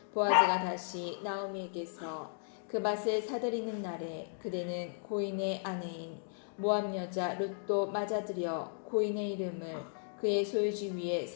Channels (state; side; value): silent; right; digital silence